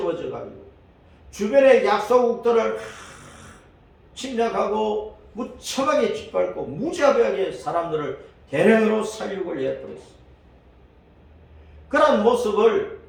가지고 주변의 약소국들을 침략하고 무참하게 짓밟고 무자비하게 사람들을 대량으로 살육을 해버렸어. 그런 모습을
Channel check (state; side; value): identical; both; correlation 1.00